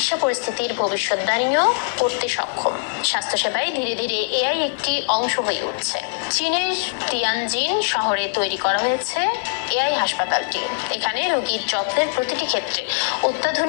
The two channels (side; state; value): right; silent; 64 dB below the other